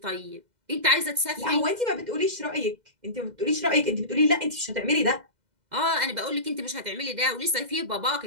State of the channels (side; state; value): left; late; 2.0 ms